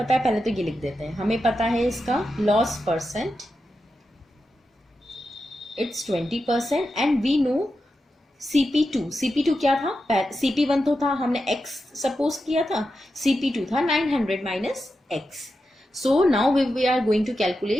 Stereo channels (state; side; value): normal; both; correlation 0.89